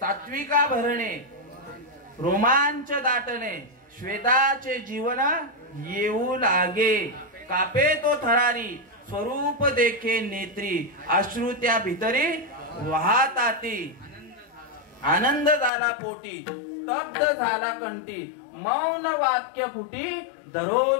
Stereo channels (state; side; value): drops out; right; at 15.7 s